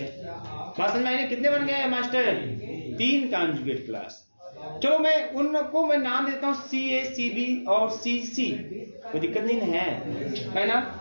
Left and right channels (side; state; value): both; inverted; correlation -1.00